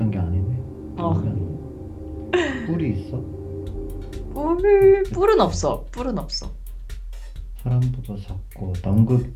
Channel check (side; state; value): both; identical; correlation 1.00